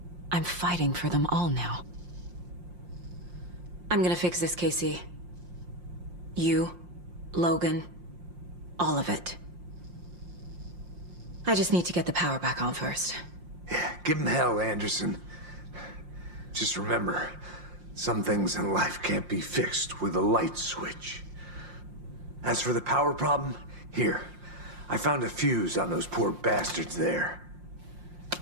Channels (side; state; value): left; late; 5.7 ms